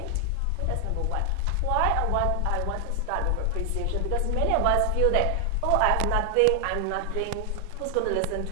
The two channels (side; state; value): both; different; correlation 0.00